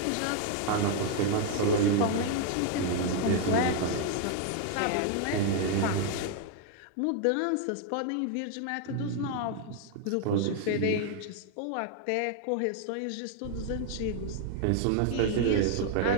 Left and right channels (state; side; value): different; both; correlation 0.00